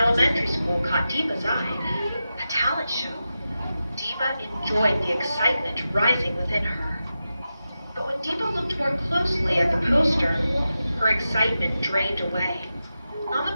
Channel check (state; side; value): inverted; both; correlation -0.91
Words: School caught Deepa's eye. A talent show. Deepa enjoyed the excitement rising within her. But when Deepa looked more closely at the poster, her excitement drained away. On